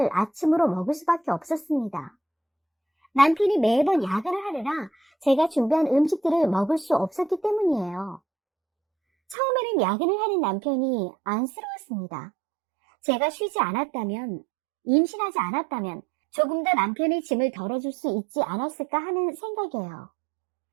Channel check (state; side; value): drops out; left; at 9.3 s